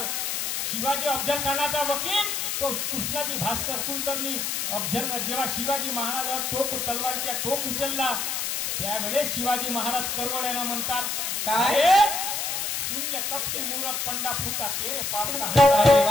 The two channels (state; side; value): noise; left; hiss, 1 dB below the sound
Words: शिवाजी अफजल खानाचा वकील तो कृष्णाजी भास्कर कुलकर्णी, अफजल जेव्हा शिवाजी महाराजावर तलवारीचा टोक उचलला त्यावेळेस शिवाजी महाराज करवळ्याला म्हणतात, काय सुन ले कपटी मूरख पंडा फूटा तेरे पाप का अरे